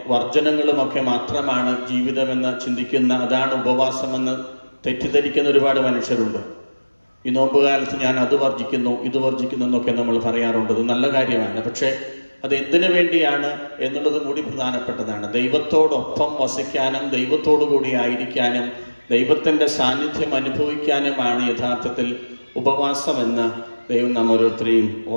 വർജനങ്ങളുമൊക്കെ മാത്രമാണ് ജീവിതമെന്ന് ചിന്തിക്കുന്ന, അതാണ് ഉപവാസമെന്ന് തെറ്റിദ്ധരിക്കുന്ന ഒരുപാട് മനുഷ്യരുണ്ട്. ഈ നോമ്പുകാലത്ത് ഞാൻ അത് വർജിക്കുന്നു ഇത് വർജിക്കുന്നു എന്നൊക്കെ നമ്മൾ പറയാറുണ്ട്. അത് നല്ല കാര്യമാണ്. പക്ഷേ അത് എന്തിനു വേണ്ടിയാണ് എന്നുള്ളതും കൂടി പ്രധാനപ്പെട്ടതാണ്. ദൈവത്തോടൊപ്പം വസിക്കാനും ദൈവത്തോടു കൂടി ആയിരിക്കാനും ദൈവത്തിൻ്റെ സാന്നിധ്യം അനുഭവിക്കാനുമാണ് യഥാർത്ഥത്തിൽ ഉപവാസമെന്ന് ദൈവം നാം ഓരോരുത്തരെയും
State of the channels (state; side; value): inverted; both; correlation -1.00